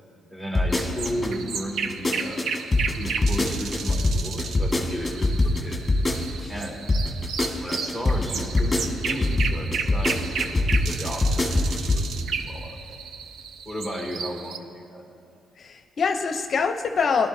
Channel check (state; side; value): normal; both; correlation 0.84